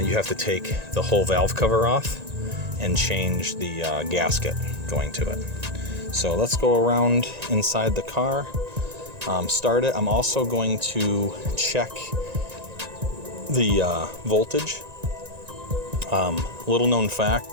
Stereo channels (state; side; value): late; left; 1.9 ms